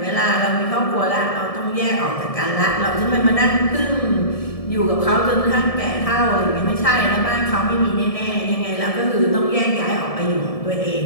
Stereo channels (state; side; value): late; right; 1.7 ms